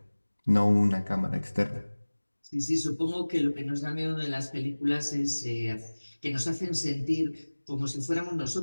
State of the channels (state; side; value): inverted; both; correlation -1.00